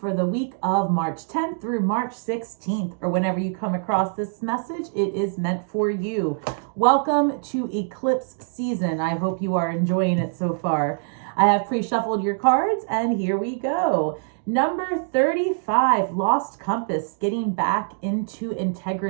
the week of March 10th through March 16th, or whenever you come across this message, it is meant for you. Welcome to eclipse season. I hope you are enjoying it so far. I have pre-shuffled your cards, and here we go. Number 35, Lost Compass, getting back into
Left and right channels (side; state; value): left; silent; digital silence